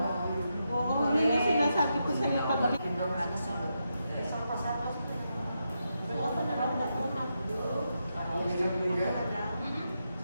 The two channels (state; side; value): inverted; both; correlation -0.85